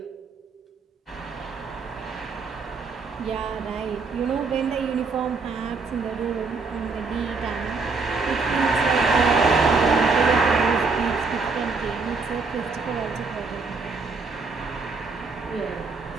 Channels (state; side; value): quieter; left; 4.3 dB